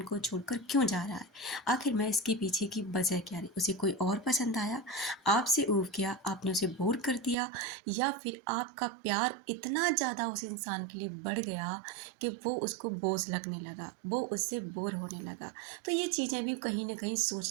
को छोड़कर क्यों जा रहा है? आखिर में इसके पीछे की वजह क्या रही? उसे कोई और पसंद आया, आपसे ऊब गया, आपने उसे बोर कर दिया, या फिर आपका प्यार इतना ज़्यादा उस इंसान के लिए बढ़ गया कि वो उसको बोझ लगने लगा, वो उससे बोर होने लगा। तो ये चीज़ें भी कहीं ना कहीं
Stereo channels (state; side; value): drops out; left; at 7.4 s